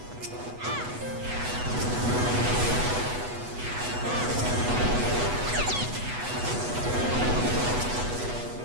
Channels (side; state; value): left; late; 8.1 ms